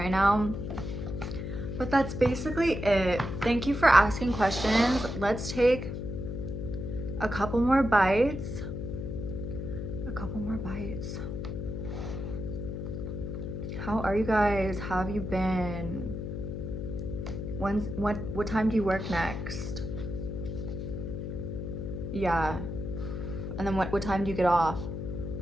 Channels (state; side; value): noise; left; hum, 5 dB below the sound